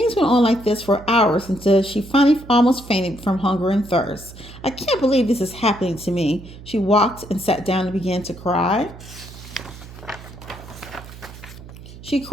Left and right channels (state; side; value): noise; right; hum, 16 dB below the sound